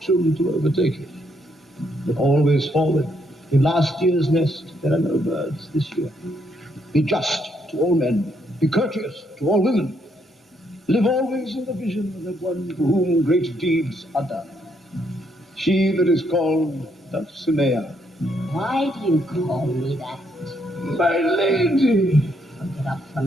to overtake it. But always forward. In last year's nest, there are no birds this year. Be just to all men. Be courteous to all women. live always in the vision of that one for whom great deeds are done. She that is called Dulcinea. Why do you call me that? My lady. I'll get up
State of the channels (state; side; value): normal; both; correlation 0.74